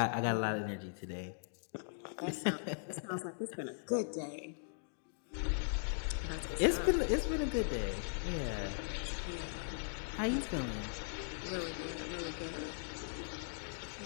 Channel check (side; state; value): right; silent; digital silence